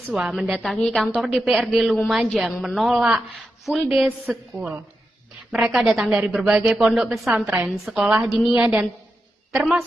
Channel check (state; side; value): normal; both; correlation 0.88